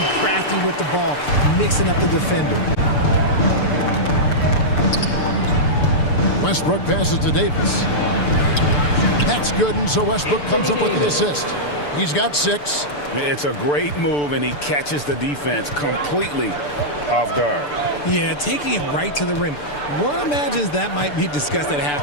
crafty with the ball, mixing up the defender. Westbrook passes to Davis. That's good, and so Westbrook comes up with the assist. He's got 6. It's a great move, and he catches the defense completely off guard. Yeah, taking it right to the rim. One imagines that might be discussed at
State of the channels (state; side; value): late; right; 6.8 ms